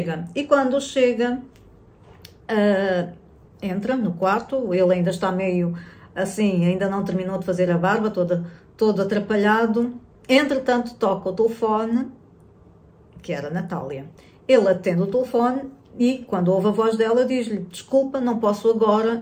E quando chega, entra no quarto, ele ainda está meio assim, ainda não terminou de fazer a barba, todo atrapalhado. Entretanto, toca o telefone, que era a Natália. Ele atende o telefone e, quando ouve a voz dela, diz-lhe, desculpa, não posso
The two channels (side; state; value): both; identical; correlation 1.00